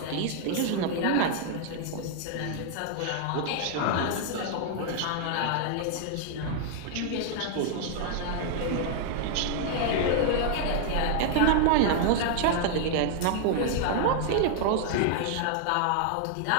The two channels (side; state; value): both; different; correlation 0.00